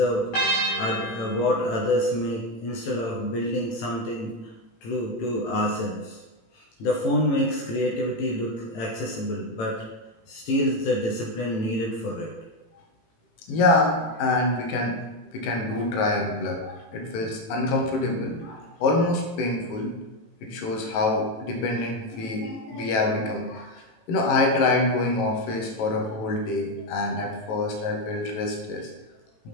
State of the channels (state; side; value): late; right; 18 ms